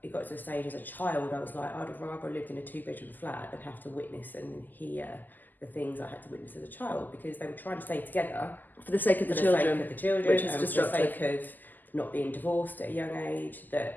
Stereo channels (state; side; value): late; right; 0.086 ms